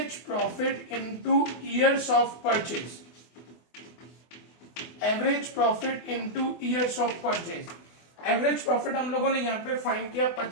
profit into years of purchase. Average profit into years of purchase. Average profit हम लोगों ने यहां पे फाइंड किया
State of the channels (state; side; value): late; right; 24 ms